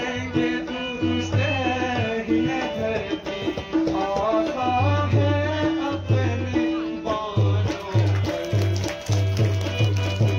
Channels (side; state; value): both; identical; correlation 1.00